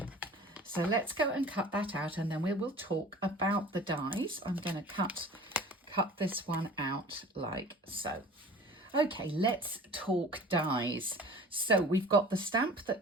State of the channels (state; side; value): normal; both; correlation 0.43